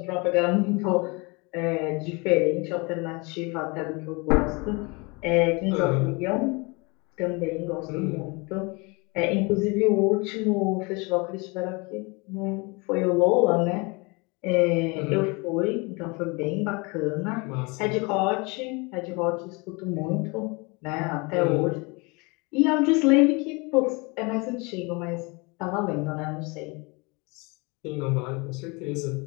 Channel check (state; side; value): quieter; right; 28.2 dB